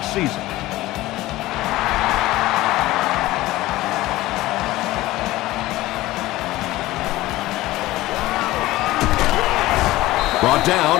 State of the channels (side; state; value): right; quieter; 17.5 dB